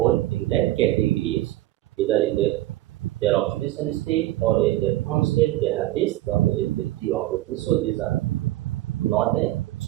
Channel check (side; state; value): left; quieter; 16.3 dB